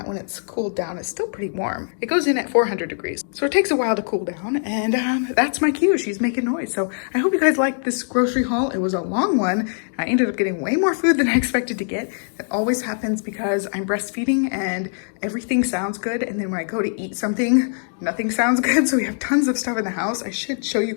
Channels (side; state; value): right; silent; digital silence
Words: when it's cooled down. It's still pretty warm. It goes in at 400 degrees. So it takes a while to cool down, and that's my cue. She's making noise. So I hope you guys liked this grocery haul. It was a long one. I ended up getting way more food than I expected to get. That always happens because I'm breastfeeding and everything sounds good. And then when I go to eat something, nothing sounds good. So we have tons of stuff in the house. I should show you